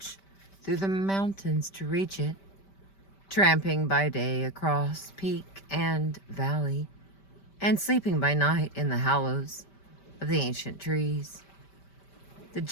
through the mountains to reach it, tramping by day across peak and valley, and sleeping by night in the hollows of the ancient trees. The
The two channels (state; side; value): late; right; 5.1 ms